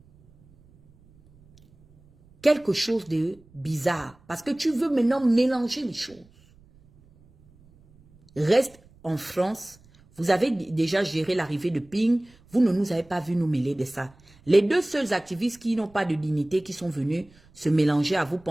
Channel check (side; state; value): right; noise; rumble, 28 dB below the sound